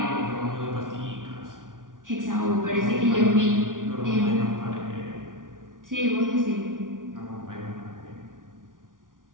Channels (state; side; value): late; left; 0.89 ms